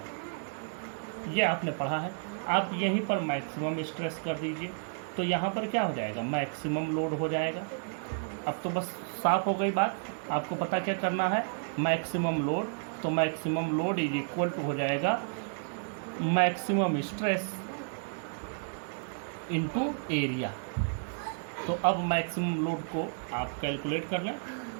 ये आपने पढ़ा है। आप यहीं पर मैक्सिमम स्ट्रेस कर दीजिए, तो यहाँ पर क्या हो जाएगा, मैक्सिमम लोड हो जाएगा। अब तो बस साफ हो गई बात। आपको पता क्या करना है, मैक्सिमम लोड। तो maximum load is equal to हो जाएगा मैक्सिमम स्ट्रेस इनटू एरिया। तो अब मैक्सिमम लोड को आप कैलकुलेट कर लें।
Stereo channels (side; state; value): left; silent; digital silence